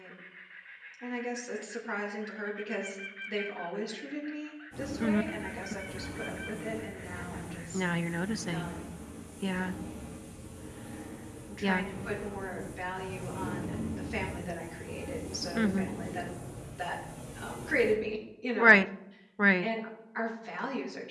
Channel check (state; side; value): identical; both; correlation 1.00